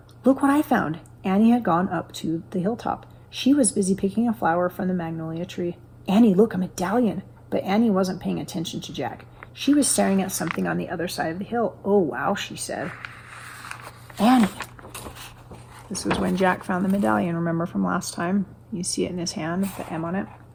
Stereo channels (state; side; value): identical; both; correlation 1.00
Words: Look what I found. Annie had gone up to the hilltop. She was busy picking a flower from the magnolia tree. Annie, look, a medallion. But Annie wasn't paying attention to Jack. She was staring at something on the other side of the hill. Oh, wow, she said. Annie. This was when Jack found the medallion, remember from last time? You see it in his hand with the M on it.